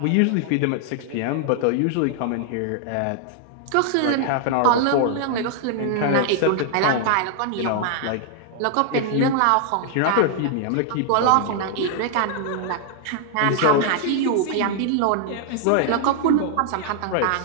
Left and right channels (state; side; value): different; both; correlation 0.00